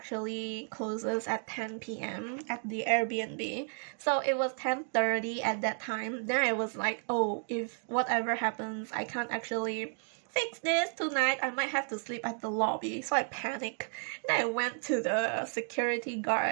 closes at 10 p.m. at the Airbnb. So it was 10:30 at that time. Then I was like, oh, if whatever happens, I can't actually fix this tonight. I might have to sleep at the lobby. So I panicked. And I went to the security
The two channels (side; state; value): left; silent; 56 dB below the other